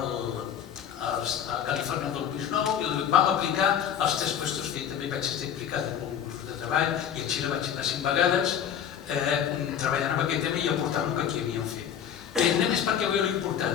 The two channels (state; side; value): quieter; right; 9.0 dB